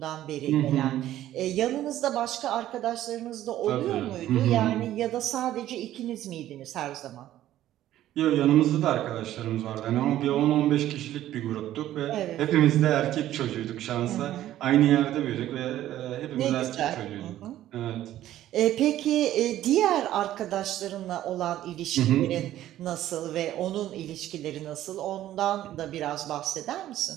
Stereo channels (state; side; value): quieter; left; 13.2 dB